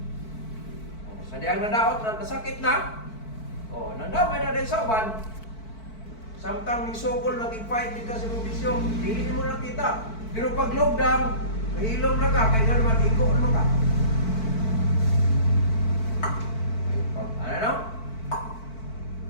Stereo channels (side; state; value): right; late; 4.5 ms